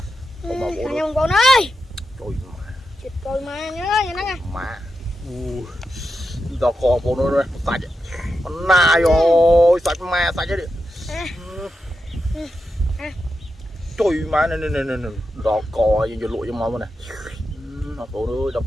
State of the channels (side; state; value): both; normal; correlation 0.88